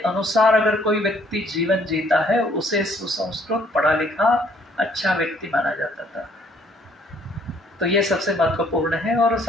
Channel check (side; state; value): both; normal; correlation 0.63